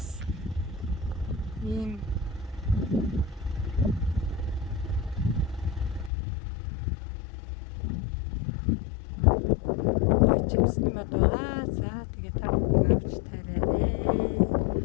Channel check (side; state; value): right; drops out; at 6.1 s